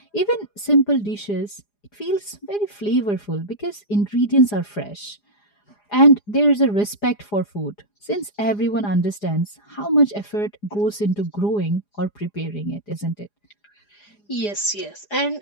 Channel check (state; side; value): late; right; 4.9 ms